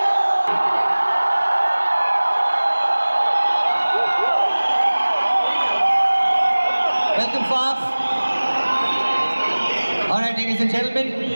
Welcome, Faf. Alright, ladies and gentlemen,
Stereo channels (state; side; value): inverted; both; correlation -1.00